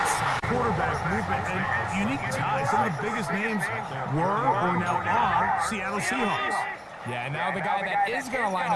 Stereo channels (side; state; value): both; identical; correlation 1.00